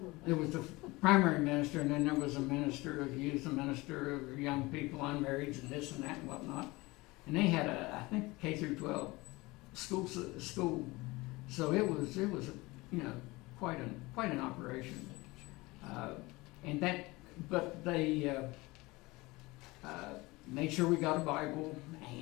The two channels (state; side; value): quieter; right; 22.1 dB